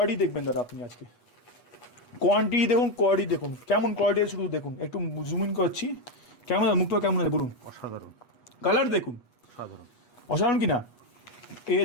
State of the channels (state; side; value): late; right; 8.3 ms